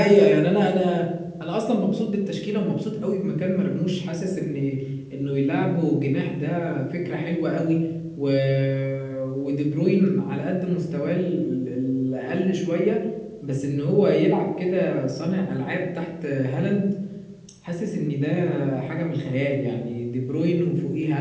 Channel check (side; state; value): both; identical; correlation 1.00